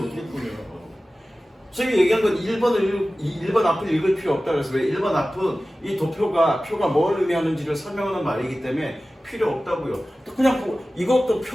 어떻게 풀려요. 선생님이 얘기한 건 1번 앞을 읽을 필요 없다고 해서 왜 1번 앞은 이 도표가 뭘 의미하는지를 설명하는 말이기 때문에 필요 없다고요. 또 그냥 이것도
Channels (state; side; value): normal; both; correlation 0.96